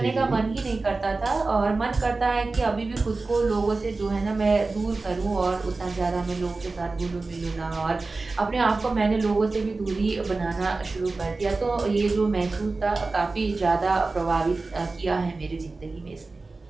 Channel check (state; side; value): quieter; left; 3.6 dB